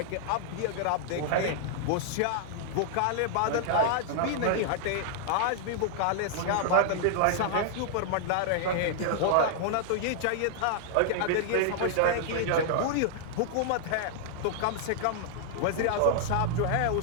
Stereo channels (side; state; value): both; different; correlation -0.01